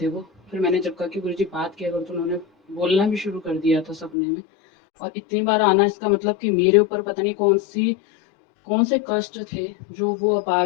वो, फिर मैंने जब कहा कि गुरुजी बात किया करो तो उन्होंने बोलना भी शुरू कर दिया था सपने में। और इतनी बार आना इसका मतलब कि मेरे ऊपर पता नहीं कौन से कष्ट थे जो वो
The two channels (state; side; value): drops out; right; at 4.2 s